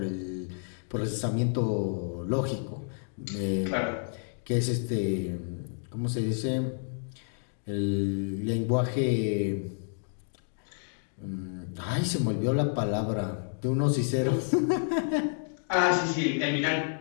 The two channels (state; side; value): silent; right; digital silence